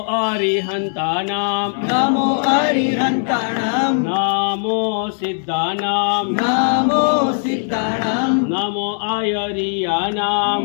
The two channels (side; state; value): right; silent; digital silence